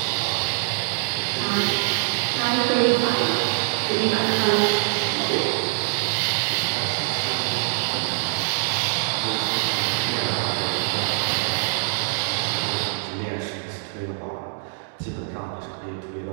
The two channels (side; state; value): left; silent; 63 dB below the other